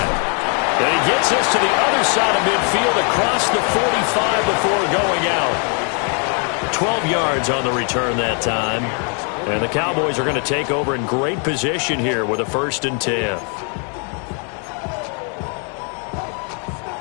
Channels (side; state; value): right; quieter; 39.8 dB